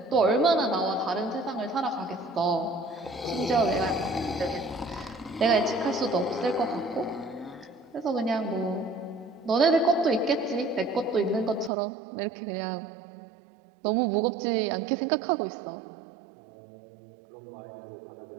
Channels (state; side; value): drops out; left; at 11.7 s